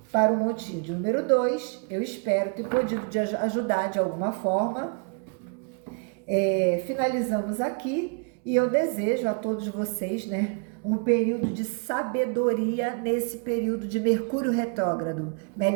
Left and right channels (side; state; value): left; quieter; 38.2 dB